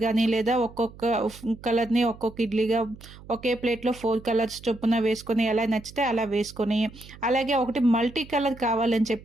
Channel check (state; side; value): noise; right; hum, 19 dB below the sound